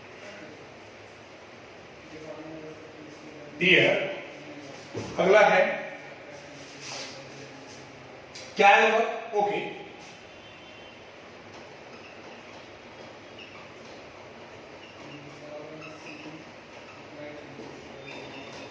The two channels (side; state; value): both; identical; correlation 1.00